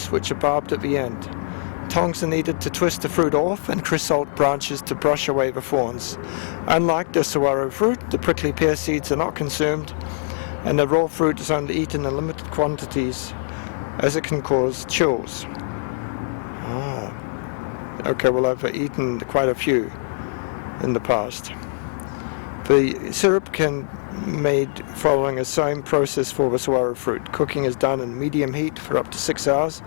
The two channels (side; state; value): right; silent; digital silence